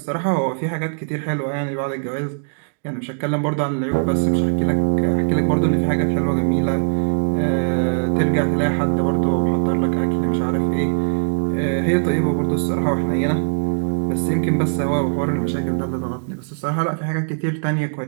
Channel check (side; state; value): left; silent; digital silence